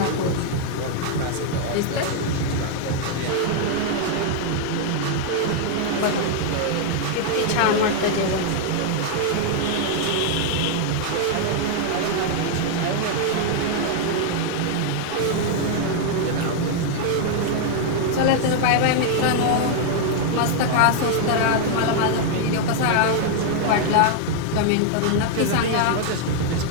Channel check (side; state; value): both; different; correlation 0.00